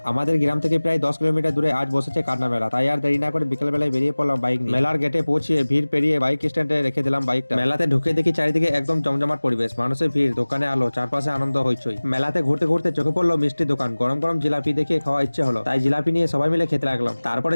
আমাদের গ্রাম থেকে প্রায় 10 কিলোমিটার দূরে আজ বসেছে কান্না মেলা। তাই আর দেরি না করে বিকেল বেলায় বেরিয়ে পড়লাম বাইক নিয়ে। মেলার গেটে পৌঁছিয়ে ভিড় পেরিয়ে বাইক স্ট্যান্ডে রেখে দিলাম বাইকটা। মেলাতে ঢুকে দেখি চারিদিকে একদম জমজমাট পরিবেশ, মানুষের ভিড়, দোকানে আলো, চারপাশে আনন্দ হইচই। মেলাতে ঘুরতে ঘুরতে চোখে পড়লো মিষ্টি দোকান, গরম গরম জিলাপি দেখে খাওয়া ইচ্ছে হলো, তাই জিলাপি নিয়ে সবাই মিলে খেতে লাগলাম। তারপরে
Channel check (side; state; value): both; inverted; correlation -1.00